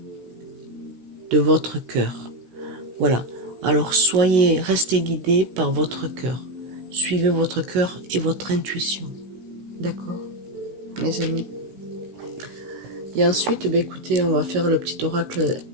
de votre cœur. Voilà. Alors restez guidés par votre cœur. Suivez votre cœur et votre intuition. D'accord, mes amis? Et ensuite, écoutez, on va faire le petit oracle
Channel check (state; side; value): late; left; 16 ms